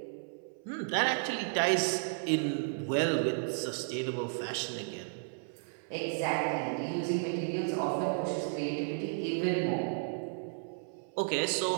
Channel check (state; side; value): silent; left; 56 dB below the other